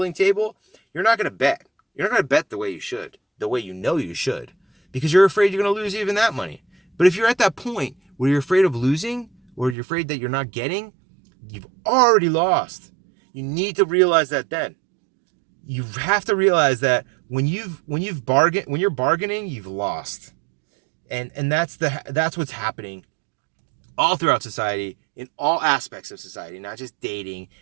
table, you're not going to bet. You're not going to bet the way you should, the way you know you should, because you're afraid you're going to lose even that money. But if you're at that point where you're afraid of losing, or you're afraid that you're not getting, you've already lost. You need to realize that then. You have to realize that when you're bargaining, you've lost. And that's what's happening all throughout society, in all aspects of society, not just dating,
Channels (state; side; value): drops out; left; at 9.8 s